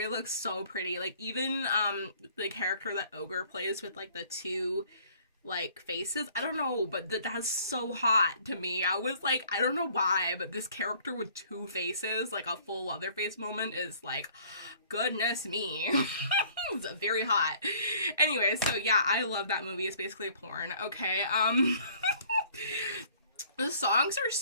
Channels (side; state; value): both; inverted; correlation -0.57